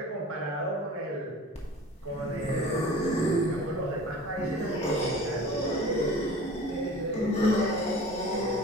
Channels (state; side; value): normal; both; correlation 0.41